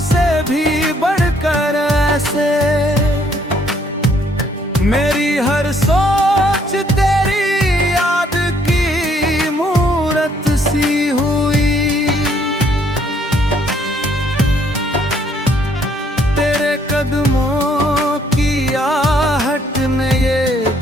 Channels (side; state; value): both; normal; correlation 0.66